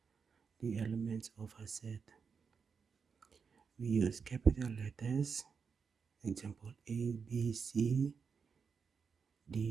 the elements of a set. We use capital letters, example A, B, C,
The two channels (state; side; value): quieter; left; 5.8 dB